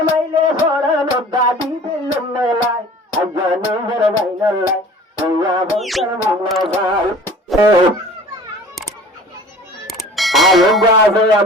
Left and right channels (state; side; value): normal; both; correlation 0.45